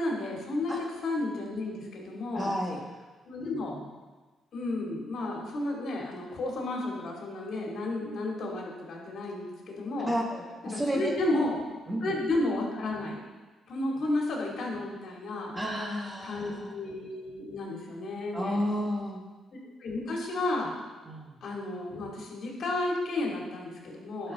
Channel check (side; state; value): both; normal; correlation 0.78